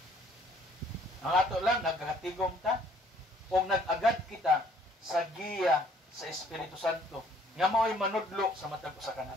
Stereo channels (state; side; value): normal; both; correlation 0.61